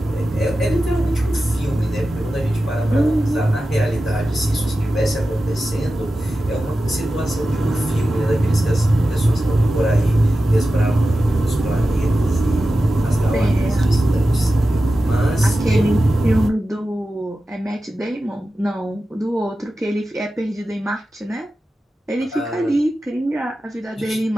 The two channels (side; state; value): both; normal; correlation 0.93